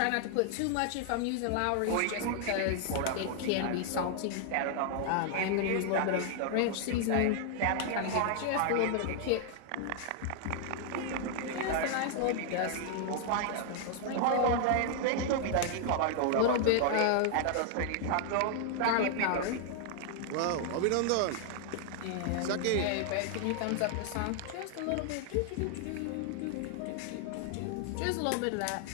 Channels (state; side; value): different; both; correlation 0.00